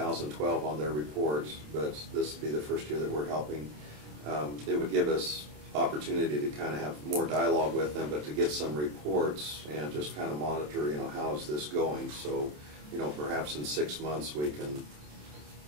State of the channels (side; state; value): left; late; 27 ms